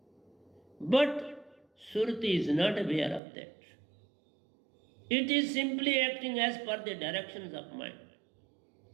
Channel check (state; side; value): drops out; left; at 3.2 s